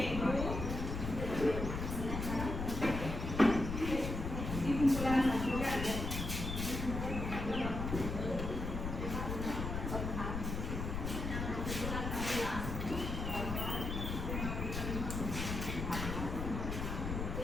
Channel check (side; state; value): left; noise; rumble, 3 dB below the sound